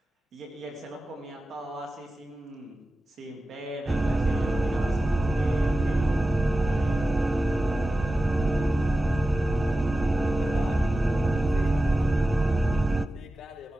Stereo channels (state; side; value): normal; both; correlation 0.94